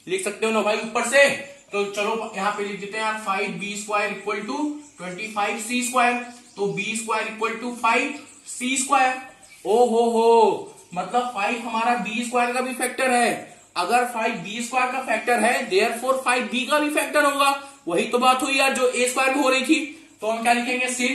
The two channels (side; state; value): both; identical; correlation 1.00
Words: लिख सकते हो ना भाई ऊपर से। तो चलो यहां पे लिख देते हैं यार 5b square equal to 25c square, तो b square equal to 5c square. ओ हो, मतलब 5 हमारा b स्क्वायर का भी फैक्टर है, अगर 5b स्क्वायर का फैक्टर है देयरफॉर 5b का भी फैक्टर होगा, वही तो बात हुई यार जो a स्क्वायर में हो रही थी। तो हम क्या लिखेंगे,